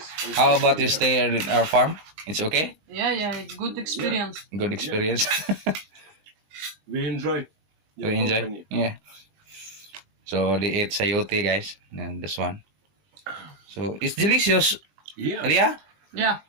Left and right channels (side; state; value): left; late; 21 ms